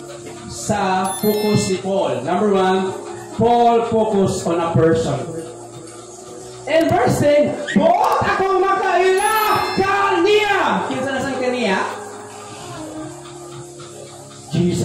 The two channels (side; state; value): both; identical; correlation 1.00